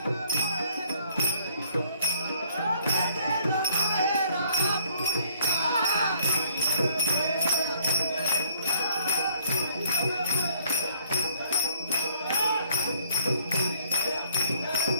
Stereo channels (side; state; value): both; inverted; correlation -0.64